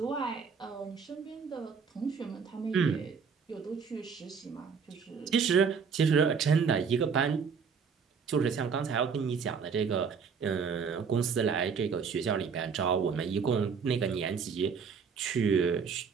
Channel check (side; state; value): left; quieter; 6.0 dB